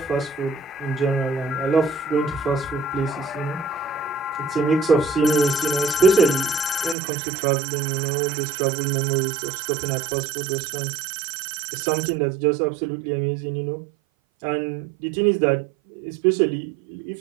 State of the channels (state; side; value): drops out; left; at 7.0 s